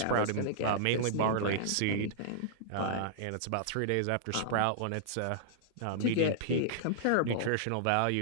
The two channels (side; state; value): both; different; correlation -0.02